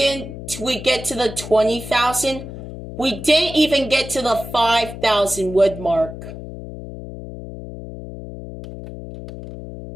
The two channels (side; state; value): left; noise; hum, 11 dB below the sound